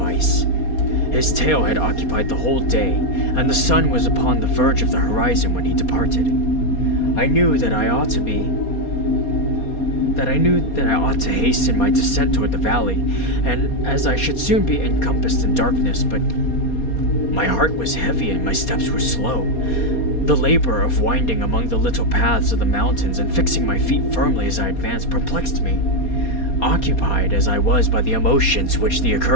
His tail had occupied the whole day, and the sun was upon the verge of the horizon when he departed. I knew that I ought to hasten my descent toward the valley, and as I should soon be encompassed in darkness, but my heart was heavy and my steps were slow. The labor of winding among the little paths of the mountains and fixing my feet firmly as I advanced perplexed me, occupied as I was by the emotions which the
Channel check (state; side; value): late; right; 4.2 ms